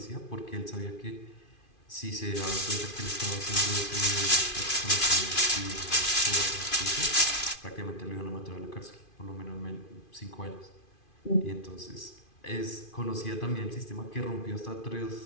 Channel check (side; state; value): right; late; 2.5 ms